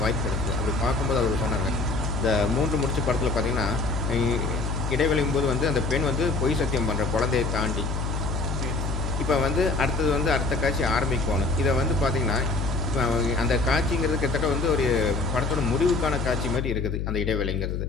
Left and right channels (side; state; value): left; noise; hum, 2 dB below the sound